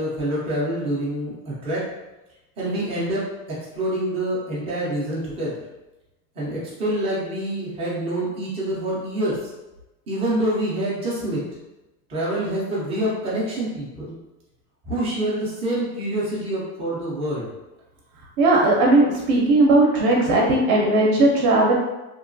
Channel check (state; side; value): normal; both; correlation 0.29